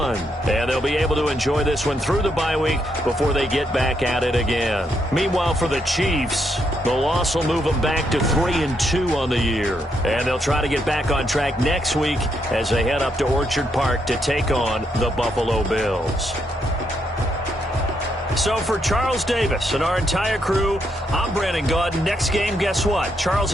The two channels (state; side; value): normal; both; correlation 0.78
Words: And they'll be able to enjoy this one through the bye week before they get back at it again. Meanwhile, for the Chiefs, the loss will move them back to 3-2 on the year. And they'll try to get back on track next week as they head up to Orchard Park to take on the Buffalo Bills. So for Charles Davis and our entire crew, I'm Brandon Gaudin. Next game, guess what? Charles